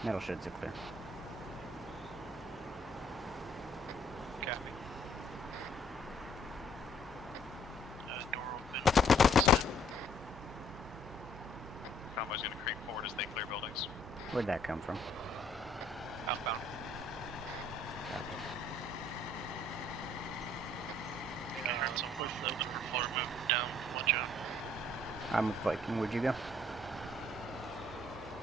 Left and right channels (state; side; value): noise; right; hum, 19 dB below the sound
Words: Metal sheds are clear. Copy. door open. Convoy's gonna creep forward as they clear buildings. Where'd that come from? Outbound. So push the upper floor, move down, watch out. I'm with Viking. Where'd you go?